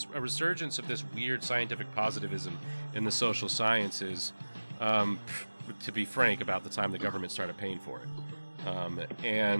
of this weird scientific positivism in the social sciences, to be frank, about the time the government started paying for it.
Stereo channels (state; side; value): inverted; both; correlation -1.00